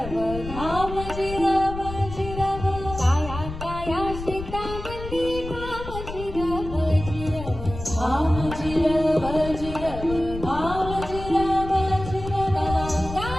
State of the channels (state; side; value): noise; left; rumble, 9 dB below the sound